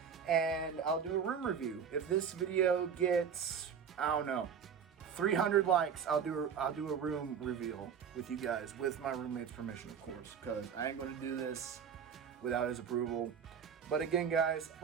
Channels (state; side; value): quieter; left; 7.3 dB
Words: And I'll do a room review. If this video gets, I don't know, 300 likes, I'll do a room reveal with you guys, with my roommate's permission, of course, because I ain't going to do this without his approval. But again, guys,